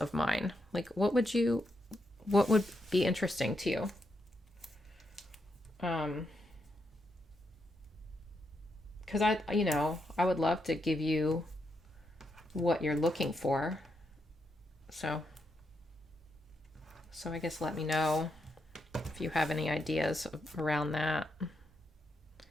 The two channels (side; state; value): both; normal; correlation 0.82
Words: mine. Like what would be interesting to you? Because I would love to give you what you're looking for. So I guess let me know if you have any ideas around that.